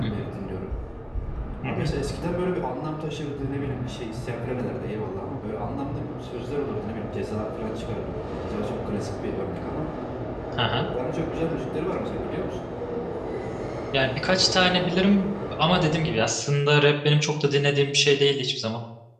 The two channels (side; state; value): both; identical; correlation 1.00